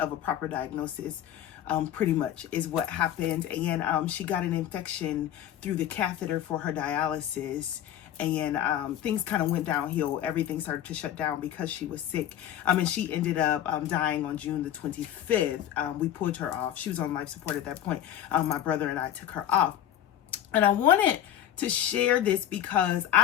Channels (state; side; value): quieter; right; 11.2 dB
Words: a proper diagnosis. Pretty much is what happened. And she got an infection through the catheter for her dialysis. And things kind of went downhill. Everything started to shut down because she was sick. And she ended up dying on June the 25th. We pulled her off. She was on life support at that point. My brother and I took her off. And I wanted to share this because